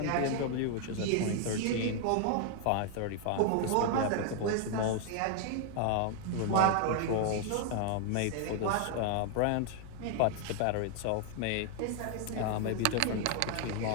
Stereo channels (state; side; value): different; both; correlation 0.00